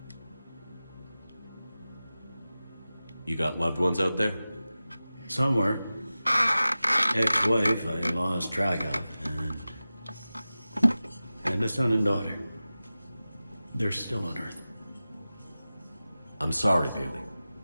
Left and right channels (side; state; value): both; inverted; correlation -0.96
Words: You got loved ones out there? Somewhere. Ex-wife I lost track of, and a son and daughter. They're still on Earth. I'm sorry, Bailey.